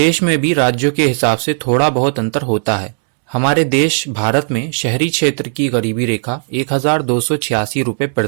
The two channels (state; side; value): silent; left; digital silence